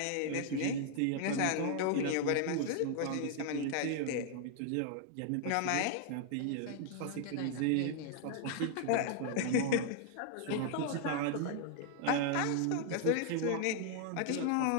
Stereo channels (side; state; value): both; different; correlation 0.00